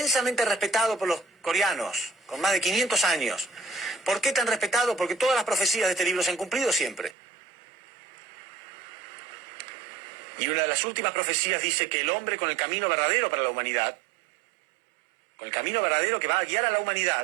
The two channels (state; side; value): drops out; left; at 7.2 s